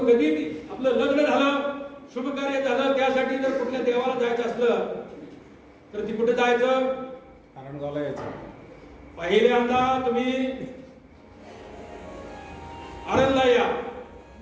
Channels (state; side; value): identical; both; correlation 1.00